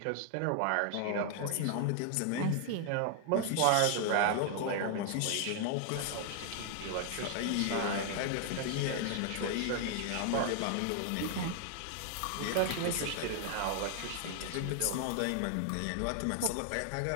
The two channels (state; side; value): different; both; correlation 0.00